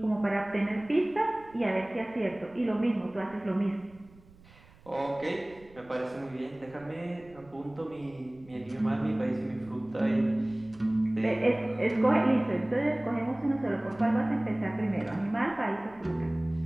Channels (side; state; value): right; noise; rumble, 25 dB below the sound